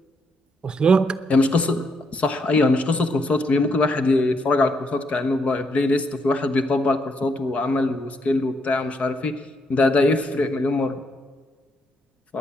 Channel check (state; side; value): normal; both; correlation 0.76